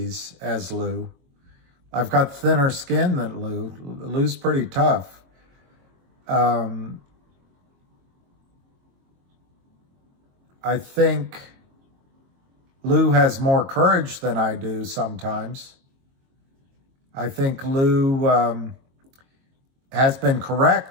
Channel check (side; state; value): left; late; 22 ms